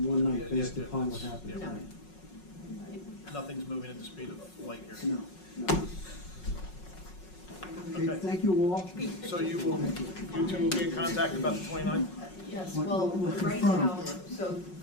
one night Yeah, based yeah, upon what that's- happened yeah. tonight. Nothing's moving at the speed of light here. No, no. Okay, thank you all. So you two will be in contact about the 29th? Yes, What- well, what right confirm? now, so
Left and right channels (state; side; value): late; right; 5.4 ms